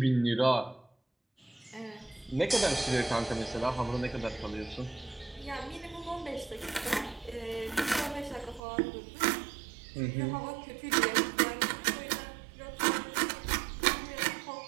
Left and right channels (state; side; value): drops out; left; at 8.6 s